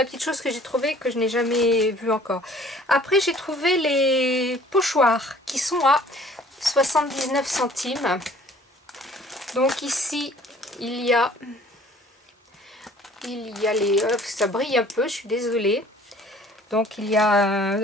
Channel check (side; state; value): both; normal; correlation 0.53